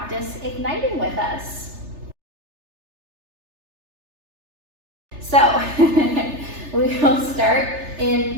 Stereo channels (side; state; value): left; late; 3.3 ms